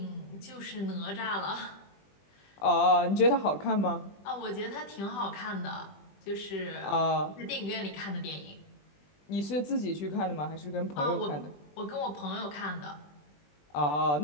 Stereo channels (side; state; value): right; late; 20 ms